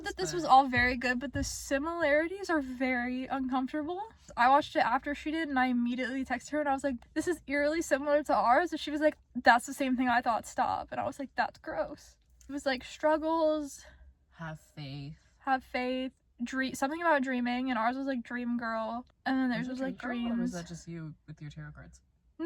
that this was all very good, but the similarities are very uncomfortable. I watched it after she did, and I immediately texted her, and I was like, this is eerily similar to ours. And she was like, that's the same thing I thought, stop. And I was like, that's gross. It was struggles. Have faith. Something about dreaming, and ours was dream girl. And then theirs was dreams. Or was that just you with your tarot cards?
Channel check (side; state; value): both; identical; correlation 1.00